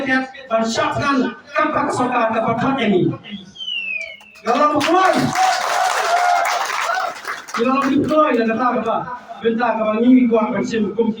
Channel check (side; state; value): both; identical; correlation 1.00